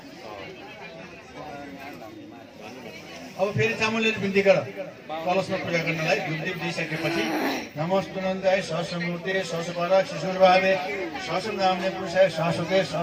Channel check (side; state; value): both; identical; correlation 1.00